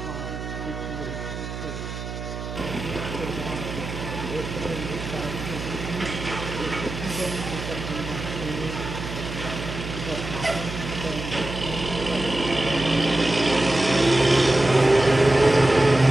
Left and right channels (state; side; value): noise; right; hum, 8 dB below the sound